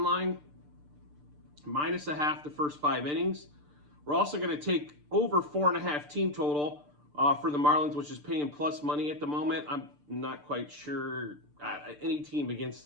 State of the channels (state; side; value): late; left; 6.8 ms